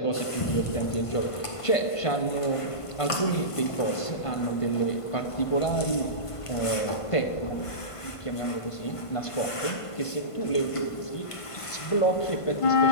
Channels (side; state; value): right; late; 1.5 ms